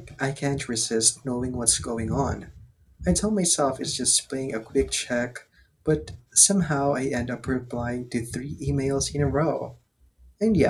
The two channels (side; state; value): both; identical; correlation 1.00